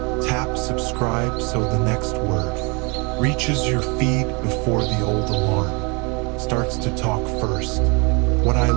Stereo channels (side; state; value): left; quieter; 31.2 dB